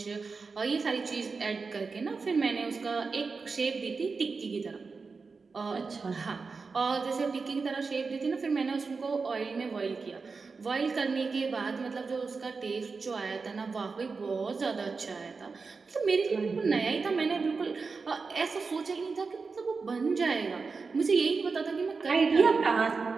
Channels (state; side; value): quieter; left; 4.6 dB